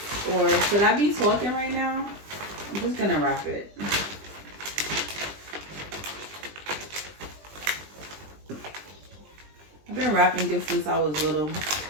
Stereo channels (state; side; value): late; left; 20 ms